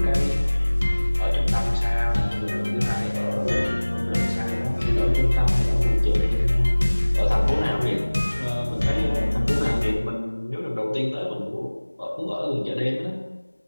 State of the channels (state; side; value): inverted; both; correlation -1.00